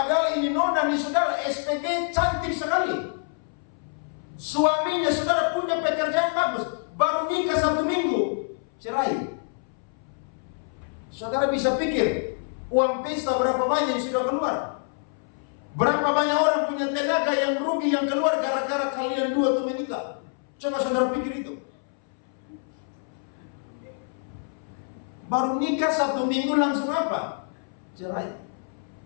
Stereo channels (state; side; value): silent; right; 61 dB below the other